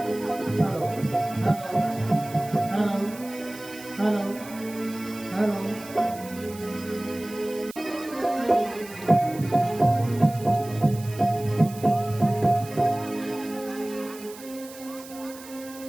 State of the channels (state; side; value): noise; right; hiss, 17 dB below the sound